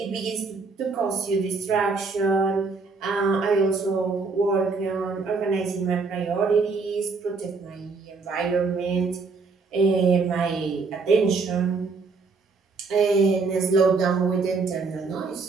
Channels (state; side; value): quieter; left; 4.4 dB